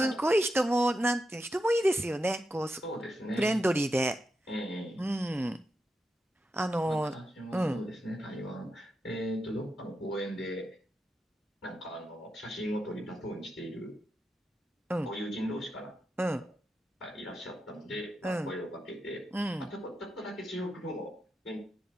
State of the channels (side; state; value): both; normal; correlation 0.87